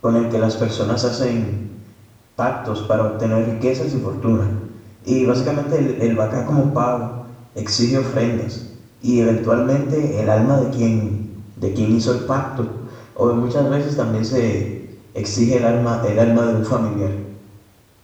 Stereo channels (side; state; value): both; identical; correlation 1.00